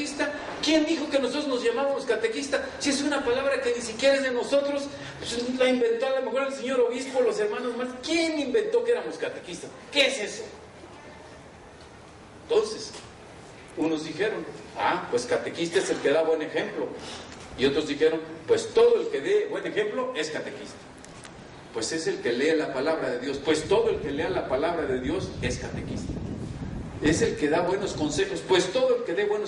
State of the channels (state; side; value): identical; both; correlation 1.00